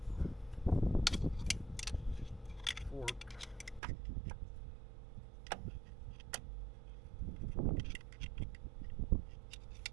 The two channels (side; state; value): left; drops out; at 3.8 s